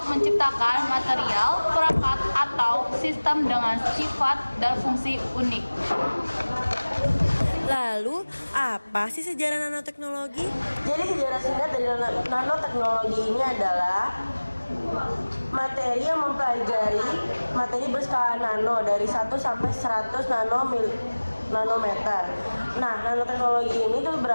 menciptakan material, perangkat, atau sistem dengan sifat dan fungsi unik. Lalu, apa sih sejarah nanoteknologi? Jadi sejarah singkat dari nanoteknologi ini adalah materi yang mempelajari materi berskala nano dari 1 sampai 100 nanometer. Nah, nanoteknologi ini tuh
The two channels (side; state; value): both; inverted; correlation -1.00